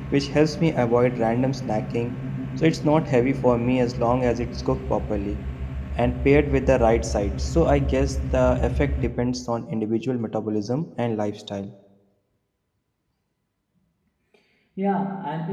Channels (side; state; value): both; identical; correlation 1.00